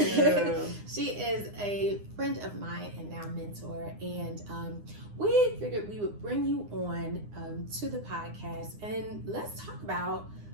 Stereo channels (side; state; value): left; late; 9.8 ms